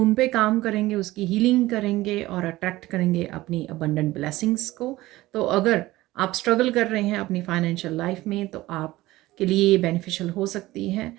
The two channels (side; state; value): left; quieter; 17.8 dB